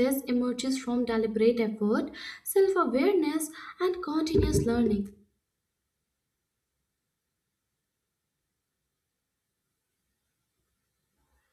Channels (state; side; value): identical; both; correlation 1.00